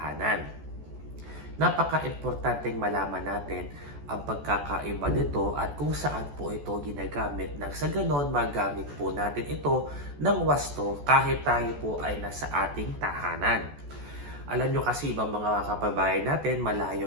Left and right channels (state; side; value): late; left; 14 ms